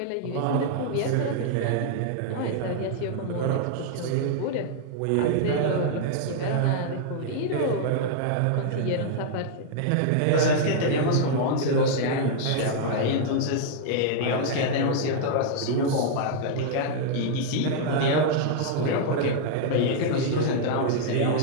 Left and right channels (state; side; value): different; both; correlation -0.01